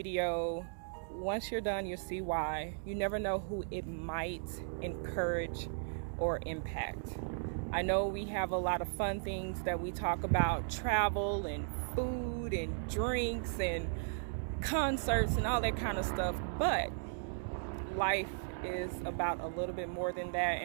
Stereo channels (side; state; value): left; silent; digital silence